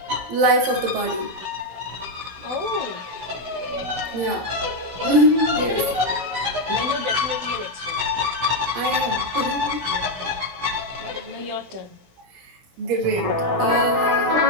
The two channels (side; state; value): left; late; 16 ms